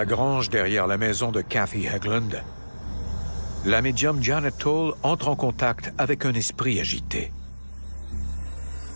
grange derrière la maison de Kathy Hegland, la médium Janet Toll entre en contact avec un esprit agité.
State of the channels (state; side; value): inverted; both; correlation -1.00